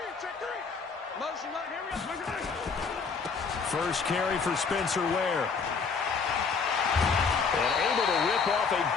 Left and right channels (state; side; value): quieter; right; 5.3 dB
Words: Motion, here we go. First carry for Spencer Ware. And able to rip off a